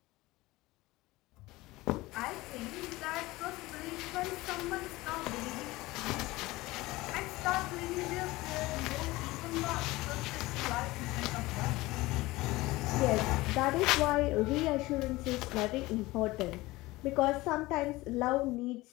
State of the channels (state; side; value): quieter; right; 19.9 dB